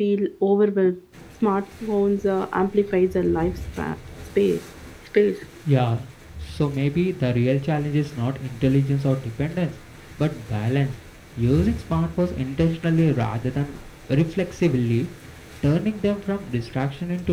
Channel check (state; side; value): identical; both; correlation 1.00